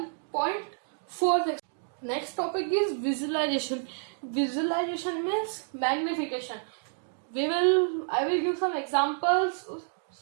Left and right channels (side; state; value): left; silent; digital silence